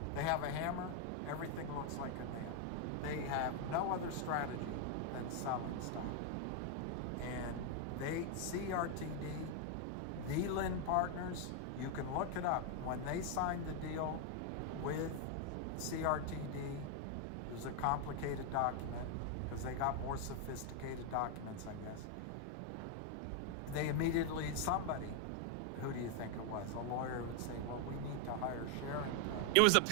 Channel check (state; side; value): different; both; correlation 0.00